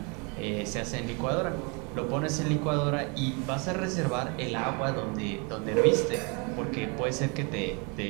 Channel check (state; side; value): quieter; left; 32.1 dB